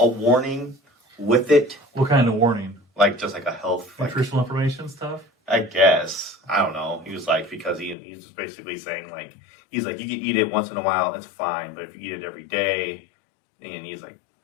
warning with it? What kind of warning? Like just like a health, Nutritional information stuff? I guess. I don't know. He was like, because he's just basically saying like, he's like, you can eat it once in a while, it's fine. But if you eat it every day, and he's like,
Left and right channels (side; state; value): right; drops out; at 8.0 s